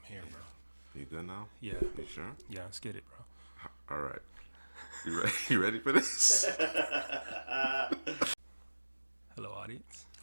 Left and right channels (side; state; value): both; inverted; correlation -1.00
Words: here, bro. You good now? Yeah. You sure? Yeah, let's get it, bro. All right. You ready? You ready for this? Hello, audience.